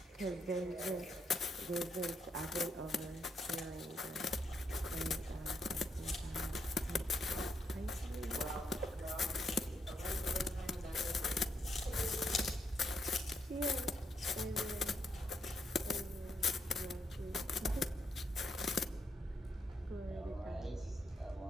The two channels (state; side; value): normal; both; correlation 0.78